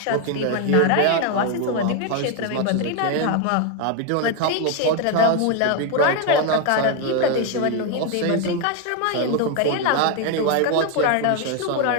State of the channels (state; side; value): different; both; correlation 0.01